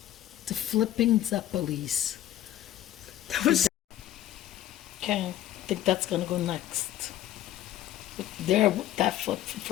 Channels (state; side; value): quieter; right; 12.8 dB